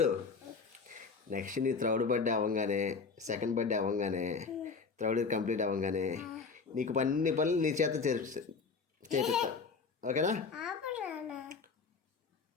నెక్స్ట్ నీ థర్డ్ బర్త్డే అవ్వగానే, సెకండ్ బర్త్డే అవ్వగానే, థర్డ్ ఇయర్ కంప్లీట్ అవ్వగానే నీకు అన్ని పనులు నీ చేత చేపిస్తా. ఓకేనా?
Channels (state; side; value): quieter; right; 4.9 dB